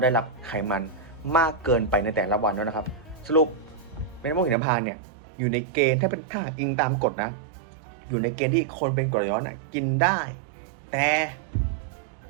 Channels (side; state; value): left; drops out; at 4.5 s